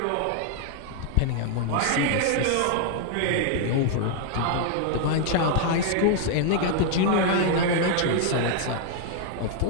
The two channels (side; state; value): both; different; correlation 0.00